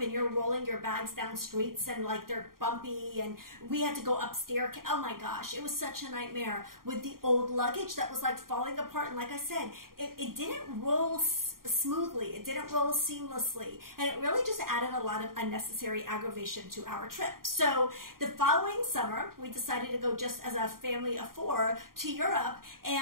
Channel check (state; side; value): late; left; 0.92 ms